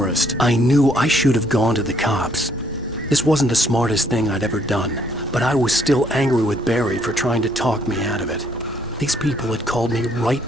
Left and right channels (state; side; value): normal; both; correlation 0.67